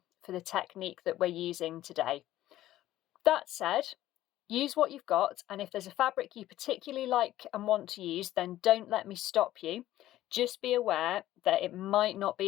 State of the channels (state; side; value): quieter; right; 14.4 dB